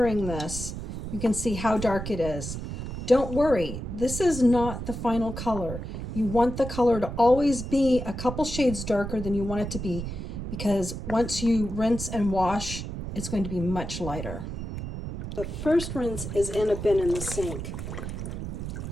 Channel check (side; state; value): right; noise; rumble, 6 dB below the sound